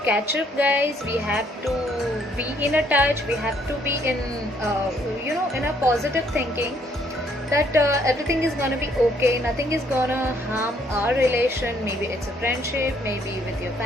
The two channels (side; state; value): both; normal; correlation 0.67